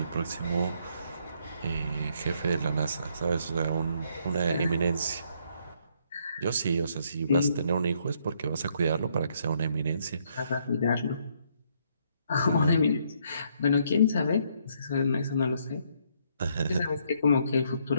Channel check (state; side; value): inverted; both; correlation -0.71